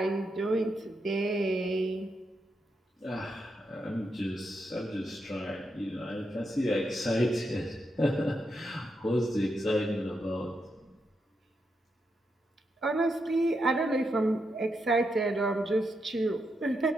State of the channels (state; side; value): normal; both; correlation 0.83